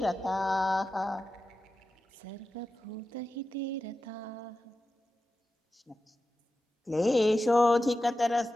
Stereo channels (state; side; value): normal; both; correlation 0.92